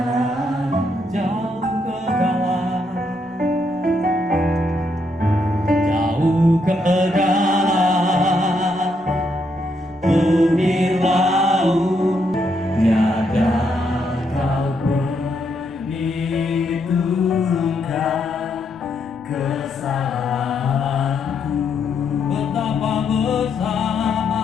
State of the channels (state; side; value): noise; right; rumble, 27 dB below the sound